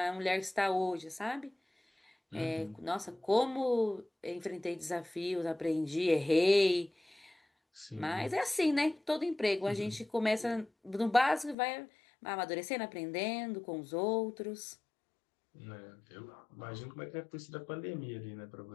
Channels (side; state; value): right; drops out; at 11.6 s